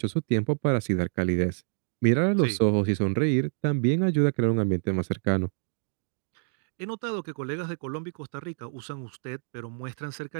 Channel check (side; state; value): left; silent; digital silence